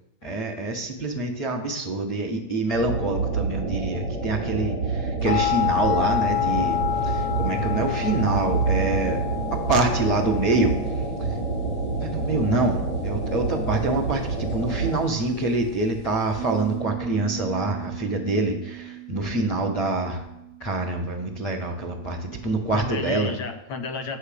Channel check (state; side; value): late; right; 8.8 ms